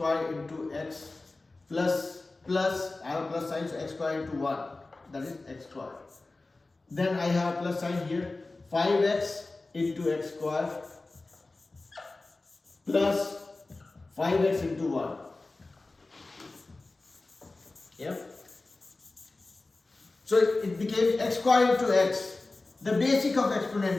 into x plus, I have a plus sign, so x squared into 1, that is x squared. Then I have a plus sign here, 5x into x squared plus 5x into 1. Yep. So it became x squared into x. The basic of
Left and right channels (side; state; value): right; quieter; 3.3 dB